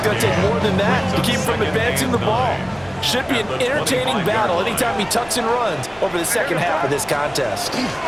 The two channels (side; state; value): left; noise; rumble, 24 dB below the sound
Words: to take more than that to keep him from advancing the ball. Should be an entertaining battle anytime he tucks and runs over the second half of this contest.